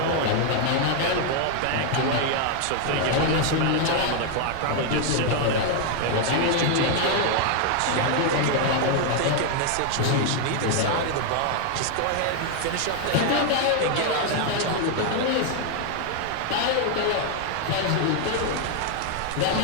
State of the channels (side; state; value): both; different; correlation 0.00